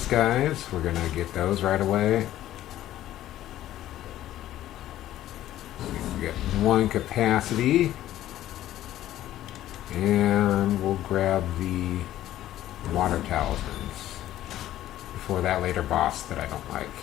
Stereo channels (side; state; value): right; quieter; 13.4 dB